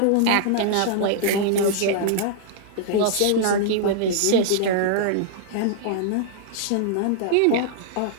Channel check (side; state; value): both; different; correlation -0.01